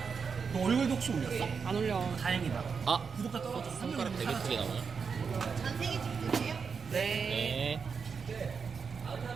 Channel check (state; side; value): quieter; left; 5.8 dB